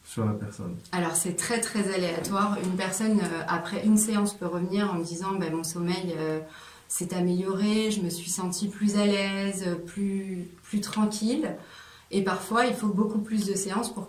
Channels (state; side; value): identical; both; correlation 1.00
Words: sur la personne? Alors c'est très très aléatoire. Une personne après une séance peut revenir en me disant mon sommeil s'est amélioré, je me suis sentie plus à l'aise, plus tranquille. Et parfois il faut beaucoup plus de séances pour